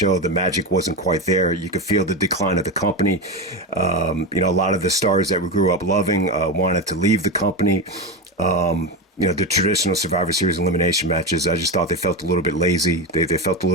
the magic wasn't quite there. You could feel the decline of the company. A lot of the stars that we grew up loving wanted to leave the company. The traditional Survivor Series elimination matches, I just thought they felt a little bit lazy. They felt a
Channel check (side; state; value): both; normal; correlation 0.16